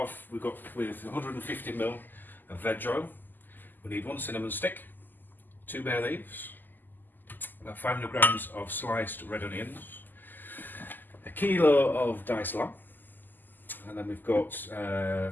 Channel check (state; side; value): late; right; 0.088 ms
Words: with 150ml of veg oil. We need 1 cinnamon stick, 2 bay leaves, about 500 grams of sliced red onions, a kilo of diced lamb, and then we've got